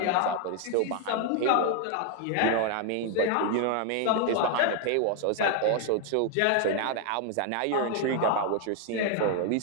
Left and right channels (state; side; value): different; both; correlation 0.00